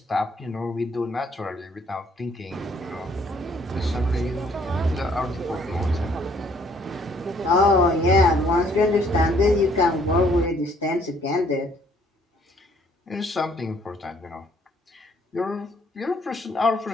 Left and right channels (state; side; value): normal; both; correlation 0.63